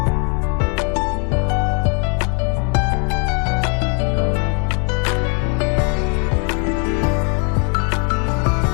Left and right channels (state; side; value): quieter; right; 36.5 dB